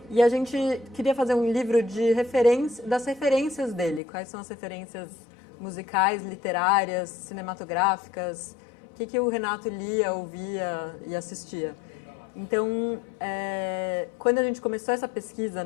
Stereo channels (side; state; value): right; drops out; at 4.0 s